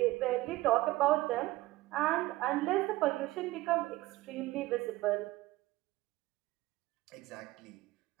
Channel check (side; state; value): left; quieter; 18.5 dB